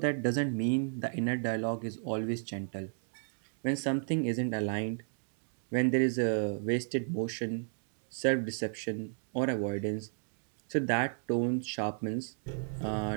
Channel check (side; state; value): left; silent; 55 dB below the other